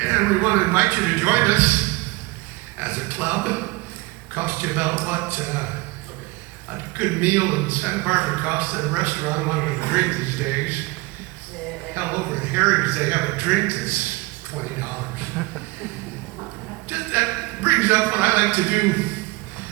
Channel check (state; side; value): quieter; left; 23.6 dB